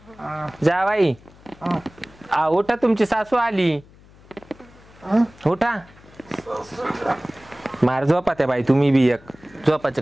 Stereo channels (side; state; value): left; noise; hum, 25 dB below the sound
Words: जावाई उठा तुमची सासू आली उठा मार झोपा त्या बाई तुम्ही बी एक झोपाचे